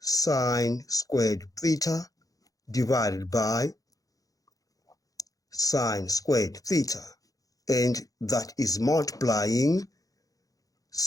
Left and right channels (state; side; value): late; right; 0.17 ms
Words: squared theta divided by sin squared theta. And that is multiplying